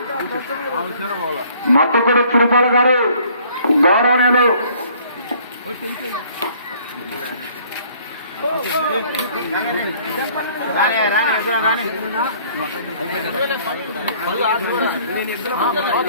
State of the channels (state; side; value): inverted; both; correlation -0.58